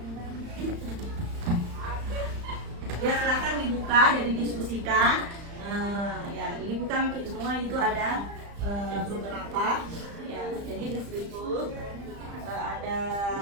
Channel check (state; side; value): late; left; 35 ms